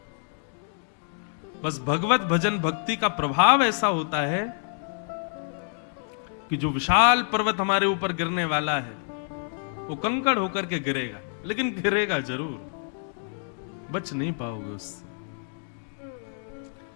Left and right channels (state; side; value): silent; right; 60 dB below the other